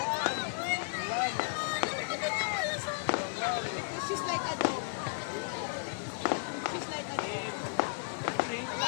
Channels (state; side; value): silent; right; 55 dB below the other